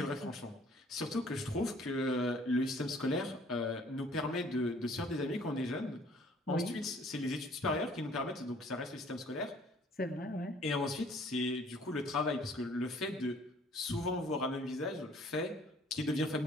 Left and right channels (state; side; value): normal; both; correlation 0.57